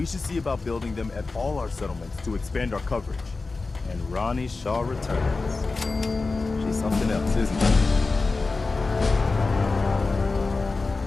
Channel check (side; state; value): right; quieter; 3.8 dB